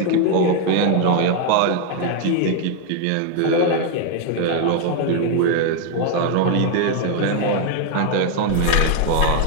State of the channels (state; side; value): different; both; correlation 0.01